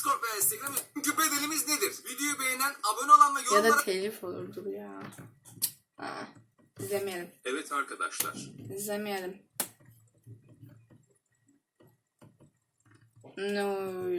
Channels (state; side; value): identical; both; correlation 1.00